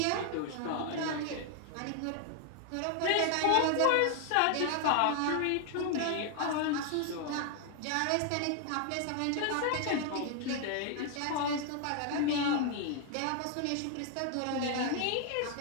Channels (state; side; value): different; both; correlation 0.00